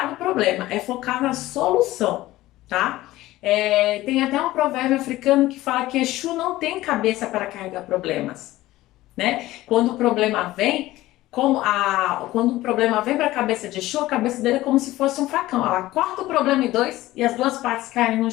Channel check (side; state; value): right; quieter; 16.8 dB